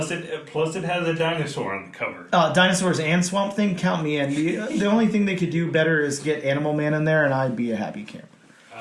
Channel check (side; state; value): both; identical; correlation 1.00